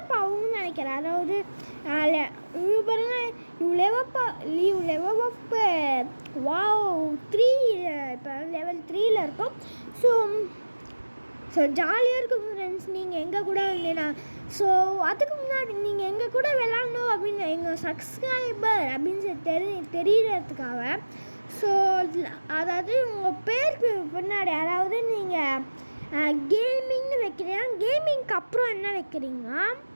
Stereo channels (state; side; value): inverted; both; correlation -1.00